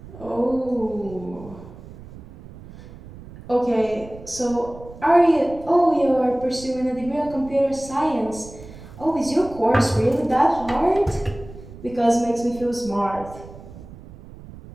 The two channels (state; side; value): noise; right; rumble, 17 dB below the sound